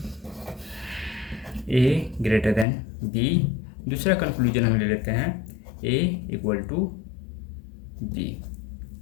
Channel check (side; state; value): right; drops out; at 2.7 s